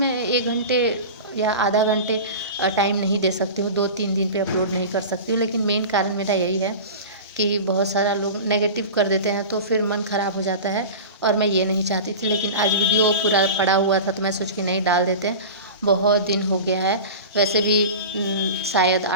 1 घंटे या आधा घंटे टाइम नहीं दे सकती हूँ, 2-3 दिन पे अपलोड नहीं कर सकती हूँ। लेकिन मेन कारण मेरा यही है कि बहुत सारा लोग नेगेटिव कर देते हैं तो फिर मन ख़राब हो जाता है, और मैं ये नहीं चाहती थी। लेकिन आज वीडियो पूरा पड़ा हुआ था तो मैं सोच के नहीं डाल देते हैं। बहुत दिन हो गया है। वैसे भी शायद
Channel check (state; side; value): inverted; both; correlation -0.31